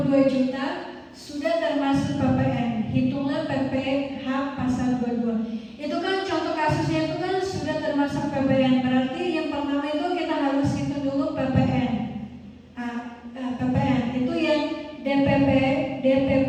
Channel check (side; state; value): both; identical; correlation 1.00